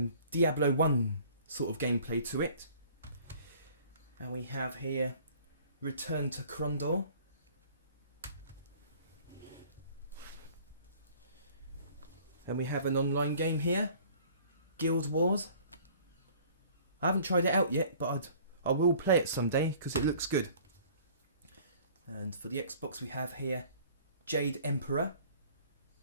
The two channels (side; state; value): both; inverted; correlation -0.52